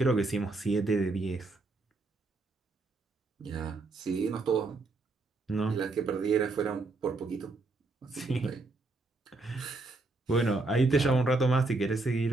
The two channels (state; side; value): quieter; left; 3.4 dB